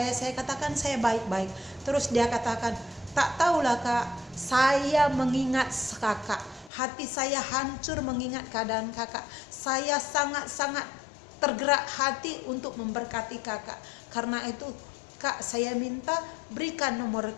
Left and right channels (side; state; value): right; drops out; at 6.7 s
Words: katakan saya baik-baik. Terus dia katakan, tak tahulah kak, saya mengingat kakak, hati saya hancur mengingat keadaan kakak, saya sangat-sangat tergerak hati untuk memberkati kakak. Karena itu kak, saya minta berikan nomor